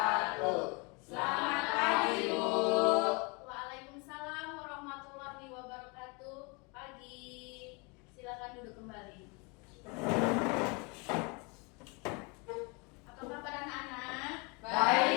Selamat pagi, Bu. Waalaikumsalam warahmatullahi wabarakatuh. Pagi. Silakan duduk kembali. Apa kabar anak-anak?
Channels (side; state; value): right; quieter; 30.4 dB